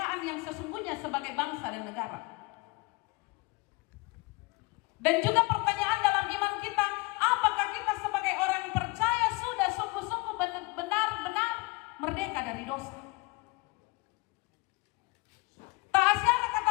yang sesungguhnya sebagai bangsa dan negara? Dan juga pertanyaan dalam iman kita, apakah kita sebagai orang percaya sudah sungguh-sungguh benar-benar merdeka dari dosa? Tak asyara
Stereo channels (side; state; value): right; quieter; 25.9 dB